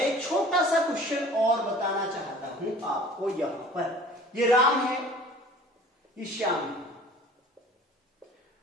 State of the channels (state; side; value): normal; both; correlation 0.47